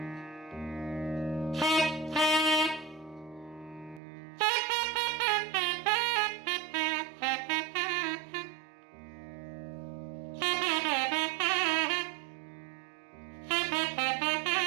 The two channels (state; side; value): drops out; left; at 4.0 s